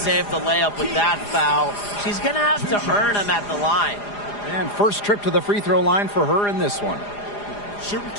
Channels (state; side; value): late; right; 4.9 ms